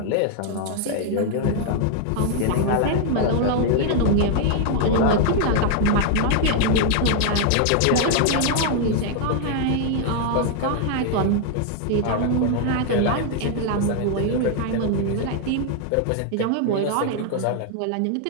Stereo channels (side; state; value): both; different; correlation 0.00